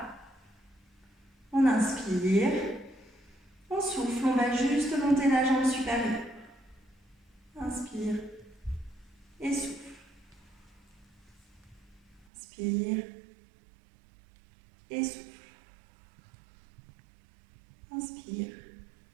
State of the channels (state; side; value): drops out; left; at 12.2 s